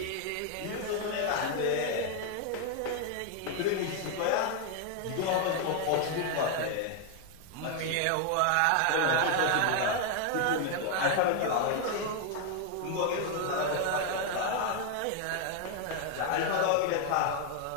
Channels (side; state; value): both; different; correlation 0.01